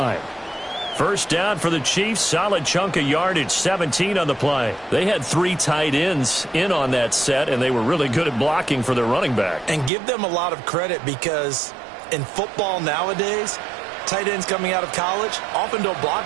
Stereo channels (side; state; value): left; drops out; at 9.9 s